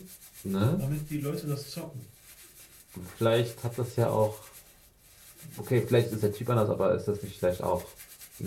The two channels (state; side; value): identical; both; correlation 1.00